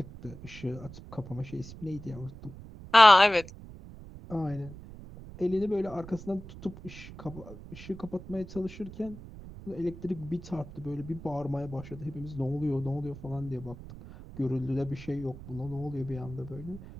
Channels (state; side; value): noise; right; rumble, 15 dB below the sound